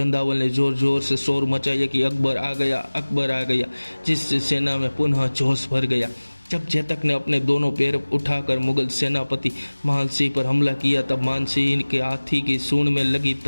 ने जोर जोर से शोर मचाया कि अकबर आ गया, अकबर आ गया, जिससे सेना में पुनः जोश भर गया। जब चेतक ने अपने दोनों पैर उठाकर मुगल सेनापति मानसिंह पर हमला किया, तब मानसिंह के हाथी की सूंड में लगी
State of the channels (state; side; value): inverted; both; correlation -1.00